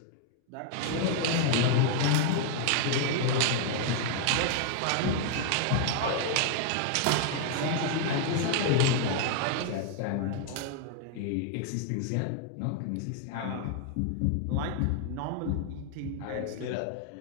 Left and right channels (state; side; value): different; both; correlation 0.00